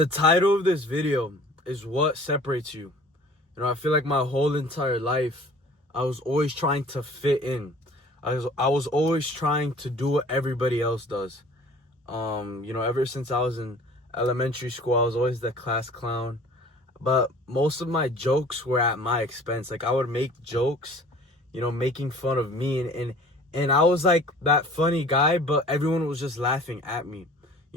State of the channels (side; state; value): both; normal; correlation 0.48